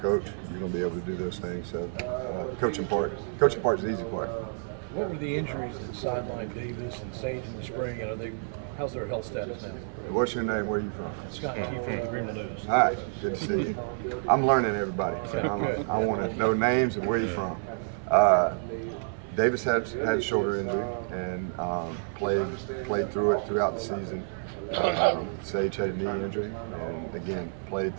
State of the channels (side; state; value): left; silent; 58 dB below the other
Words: you're going to be able to do those things. So coaching part is the easy part. What were the injuries that sidelined Davis and Sage in the spring? How's their health status now? What's your name? Where are you from? Scott Key from the Greenville News. All right, good to see you. I'm learning everybody. I want to know names and where you're from. Davis had shoulder injury and played through it throughout the season. Sage had a knee injury and again played